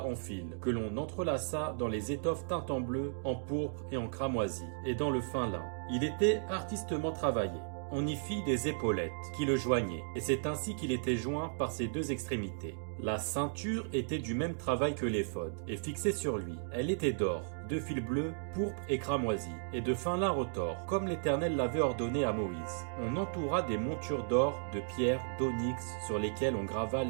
fils, que l'on entrelaça dans les étoffes teintes en bleu, en pourpre et en cramoisi, et dans le fin lin. Il était artistement travaillé. On y fit des épaulettes qui le joignaient, et c'est ainsi qu'il était joint par ses deux extrémités. La ceinture était du même travail que l'éphod, et fixée sur lui. Elle était d'or, de fil bleu, pourpre et cramoisi, et de fin lin retors, comme l'Éternel l'avait ordonné à Moïse. On entoura des montures d'or, de pierre, d'onyx, sur lesquelles on grava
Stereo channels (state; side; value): silent; left; digital silence